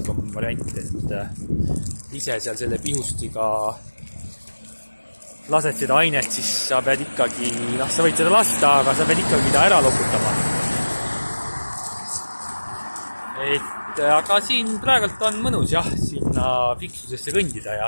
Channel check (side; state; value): both; inverted; correlation -1.00